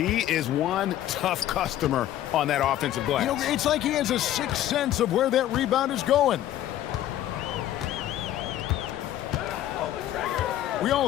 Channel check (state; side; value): quieter; right; 12.7 dB